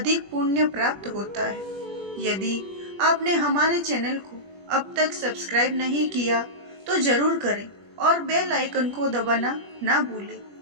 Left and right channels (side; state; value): left; late; 21 ms